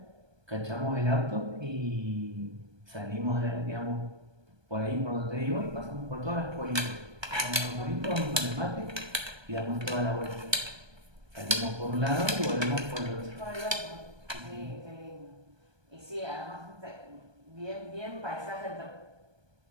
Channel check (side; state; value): left; late; 1.2 ms